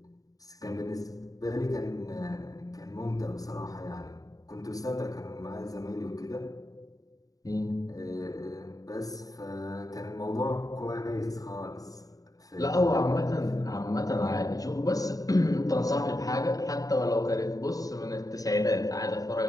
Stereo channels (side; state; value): right; late; 0.17 ms